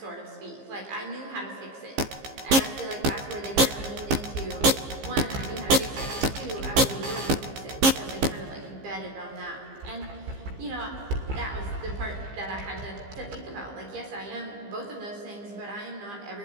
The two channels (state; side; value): late; left; 15 ms